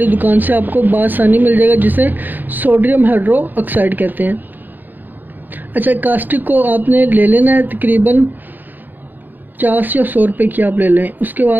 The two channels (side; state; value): left; late; 0.089 ms